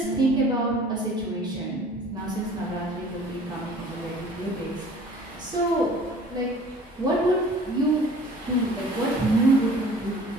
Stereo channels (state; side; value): normal; both; correlation 0.48